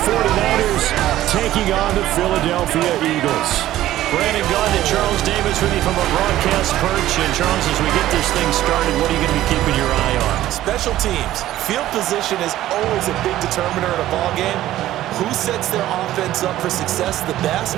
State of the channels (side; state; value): left; quieter; 14.1 dB